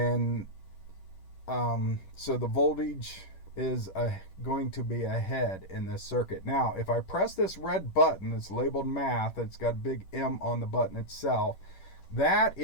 so the voltage is going to be ahead in this circuit. Now, if I press this red button, it's labeled math, it's got a big M on the button itself, that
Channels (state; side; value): late; right; 11 ms